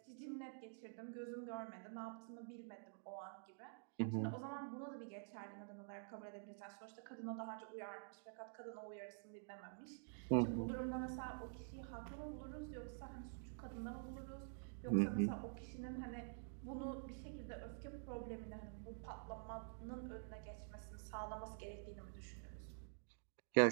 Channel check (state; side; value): silent; left; digital silence